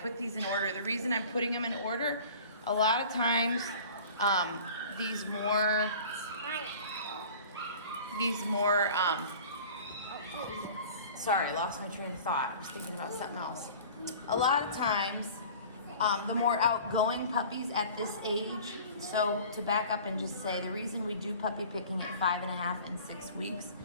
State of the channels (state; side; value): inverted; both; correlation -0.43